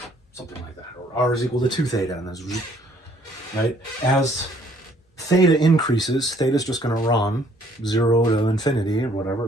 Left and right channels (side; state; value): both; normal; correlation 0.62